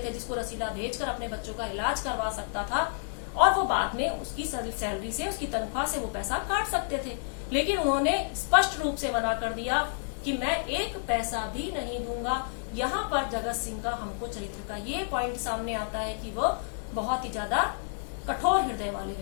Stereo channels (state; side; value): silent; right; digital silence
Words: थे, जिसको रसीला भेजकर अपने बच्चों का इलाज करवा सकता था और वो बाद में उसकी सैलरी से, उसकी तनख्वाह से वो पैसा काट सकते थे। लेकिन उन्होंने स्पष्ट रूप से मना कर दिया कि मैं एक पैसा भी नहीं दूंगा। यहाँ पर जगत सिंह का हमको चरित्र का ये पॉइंट सामने आता है कि वो बहुत ही ज्यादा कठोर हृदय वाले